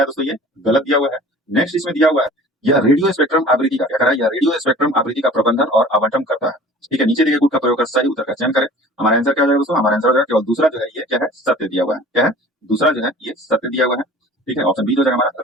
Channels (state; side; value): normal; both; correlation 0.45